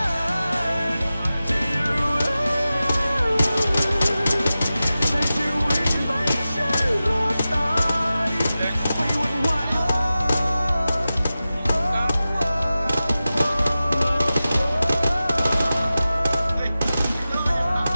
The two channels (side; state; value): both; inverted; correlation -0.95